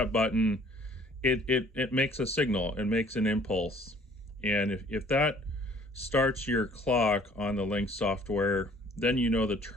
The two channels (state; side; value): normal; both; correlation 0.55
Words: button, it makes a signal, it makes an impulse. And if that starts your clock on the Lynx software, then you know the